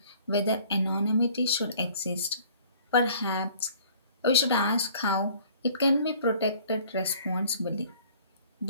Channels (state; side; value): inverted; both; correlation -0.53